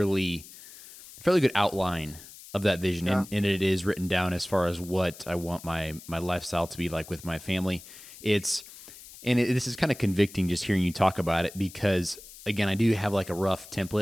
good outline of that vision, yeah, and it is written down as far as what I want my lifestyle to be like with my family. It's this is kind of convicting just hearing you talk about it because again, I do have like a rough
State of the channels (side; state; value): left; noise; hiss, 18 dB below the sound